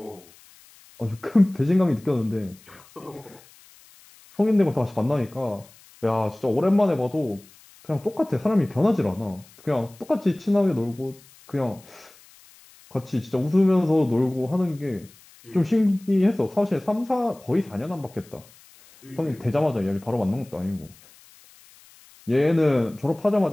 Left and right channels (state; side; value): noise; left; hiss, 26 dB below the sound